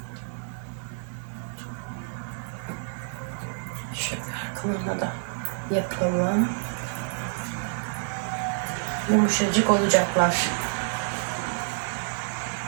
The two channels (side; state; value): left; silent; digital silence